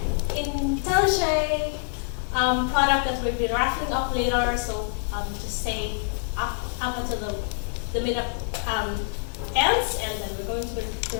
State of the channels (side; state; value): right; silent; digital silence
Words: IntelliJ product that we'll be raffling off later. So just say up until the meetup ends, and then we're going to